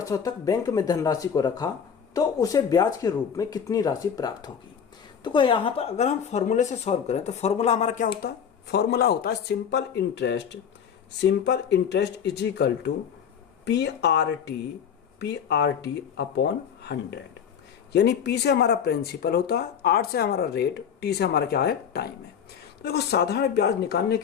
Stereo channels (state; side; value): quieter; right; 7.7 dB